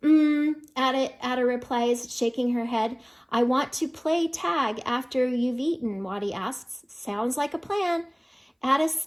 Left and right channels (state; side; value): identical; both; correlation 1.00